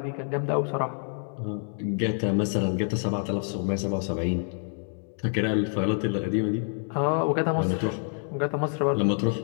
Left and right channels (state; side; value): silent; right; 56 dB below the other